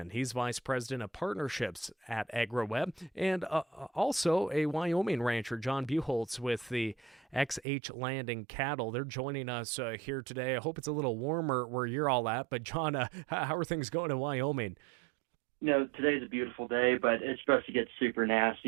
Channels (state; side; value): drops out; left; at 7.6 s